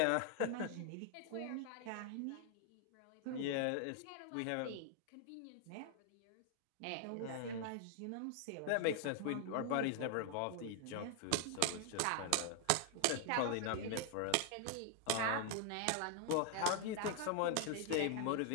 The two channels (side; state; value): both; different; correlation 0.00